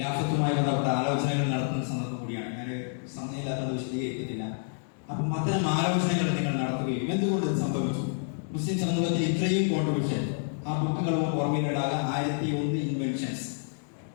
ബന്ധപ്പെട്ട ആലോചനകൾ നടത്തുന്ന സന്ദർഭം കൂടിയാണ്. ഞാൻ സമയമില്ലാത്തത് വിശദീകരിക്കുന്നില്ല. അപ്പം അത്തരം ആലോചനകൾ നിങ്ങൾ നടത്തുകയും എന്തുകൊണ്ട് ഇത് സംഭവിച്ചു, മുസ്ലിം സമൂഹത്തിൽ ഇത്രയും കോൺട്രിബ്യൂഷൻ, ആ ബുക്കുകളും ഓർമ്മയിലിടാതെ 1001 ഇൻവെൻഷൻസ്.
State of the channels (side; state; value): right; silent; digital silence